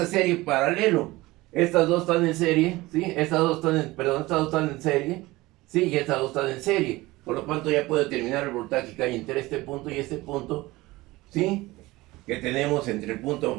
serie paralelo. Estas dos están en serie, ¿sí? Estas dos están en serie, ¿sí? Y estas dos están en serie. Por lo tanto, ya puedo determinar el voltaje que hay entre este punto y este punto, ¿sí? Que tenemos entre el punto,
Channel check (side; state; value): left; quieter; 19.9 dB